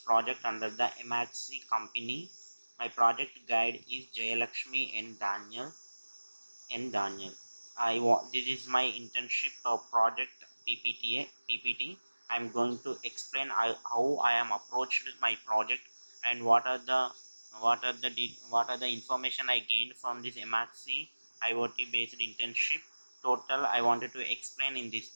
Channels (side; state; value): both; inverted; correlation -1.00